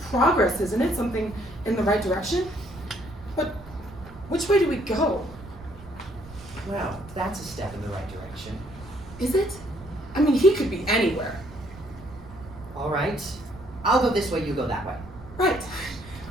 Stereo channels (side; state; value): right; noise; rumble, 18 dB below the sound